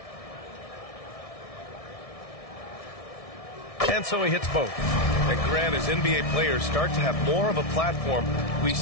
And so he hits both. And Grant, as NBA players start to have more of a platform, we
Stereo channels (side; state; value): right; late; 1.6 ms